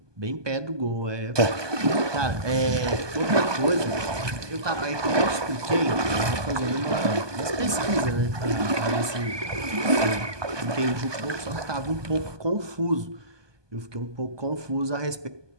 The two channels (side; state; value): left; late; 1.2 ms